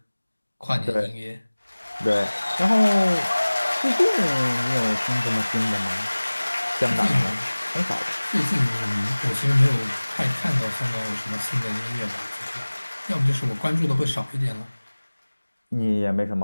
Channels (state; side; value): inverted; both; correlation -1.00